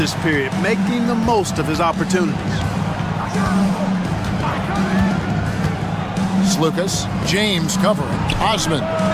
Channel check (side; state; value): both; identical; correlation 1.00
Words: period, making the most of his opportunities. Slukas. James covering. Osman.